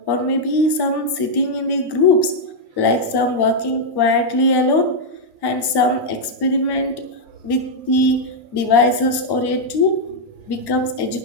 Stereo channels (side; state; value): right; late; 1.1 ms